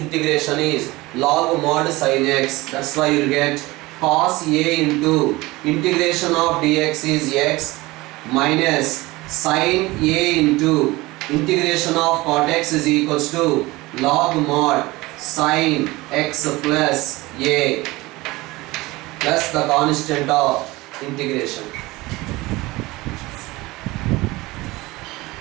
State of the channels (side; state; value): left; quieter; 20.8 dB